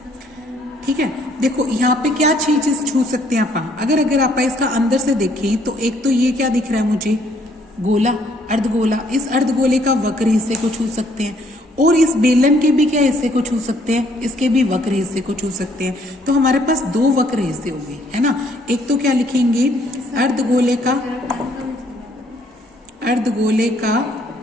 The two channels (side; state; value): both; normal; correlation 0.65